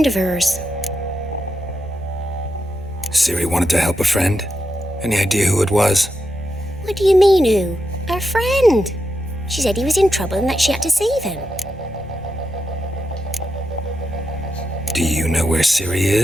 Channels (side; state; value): both; normal; correlation 0.86